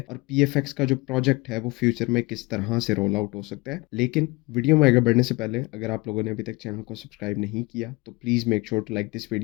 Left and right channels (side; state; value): right; quieter; 23.6 dB